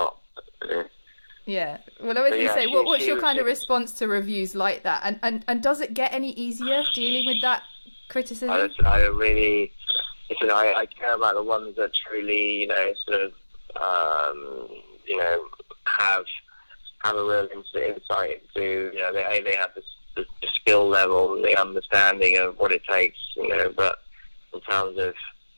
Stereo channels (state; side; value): inverted; both; correlation -1.00